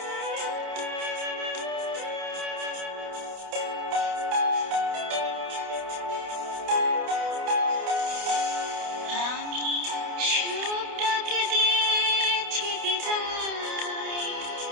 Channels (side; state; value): left; late; 28 ms